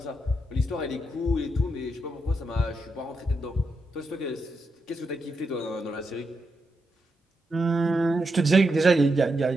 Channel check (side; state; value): both; normal; correlation 0.84